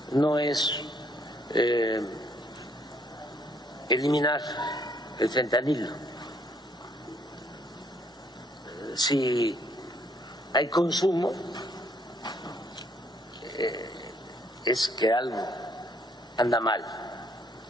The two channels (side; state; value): both; normal; correlation 0.68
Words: no es eliminar el fentanilo. Si hay consumo, es que algo anda mal